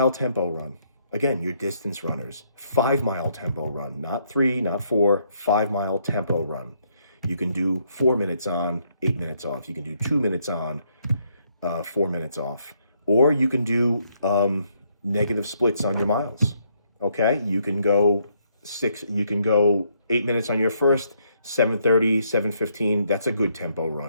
tempo run. Again, your distance runners, 5-mile tempo run, not 3, not 4, 5-mile tempo run. You can do 4 minutes on, 8 minutes off. You can do 2 minutes on, 4 minutes off. Or you can do negative splits on your miles. Okay, you can go 8 minutes on your first, 7:30, 7:15. That's a good tempo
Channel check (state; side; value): inverted; both; correlation -0.72